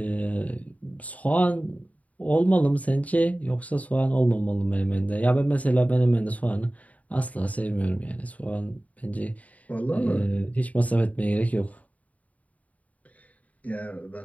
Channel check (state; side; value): late; right; 0.070 ms